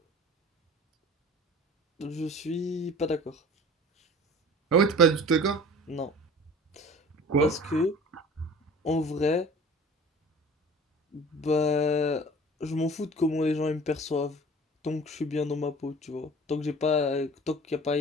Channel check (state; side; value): normal; both; correlation 0.43